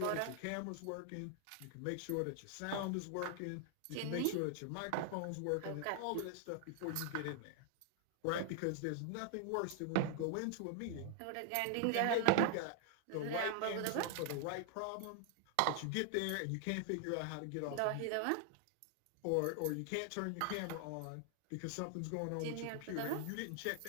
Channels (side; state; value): both; different; correlation 0.00